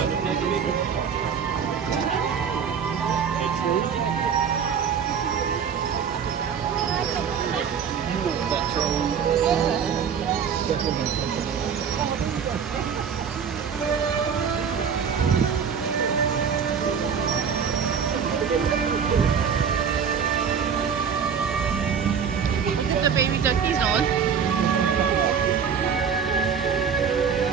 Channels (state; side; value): quieter; left; 7.0 dB